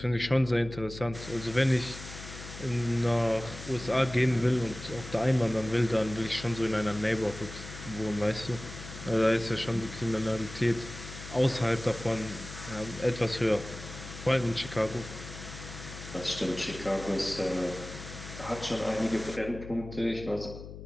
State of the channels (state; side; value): noise; left; hum, 12 dB below the sound